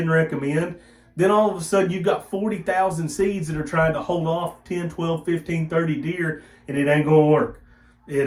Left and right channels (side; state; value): both; identical; correlation 1.00